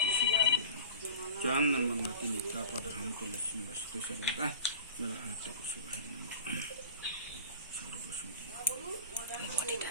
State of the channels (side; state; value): both; inverted; correlation -0.40